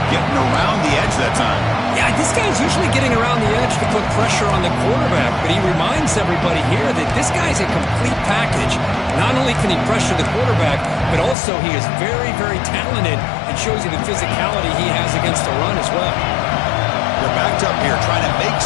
getting around the edge that time. Yeah, this guy's usually getting around the edge to put pressure on the quarterback, but he reminds everybody here that this guy's a complete package. Not only can he pressure the quarterback, but also he is very, very talented and shows you the physicality he has against the run as well. They're backed up here trying to make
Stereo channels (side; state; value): right; drops out; at 11.4 s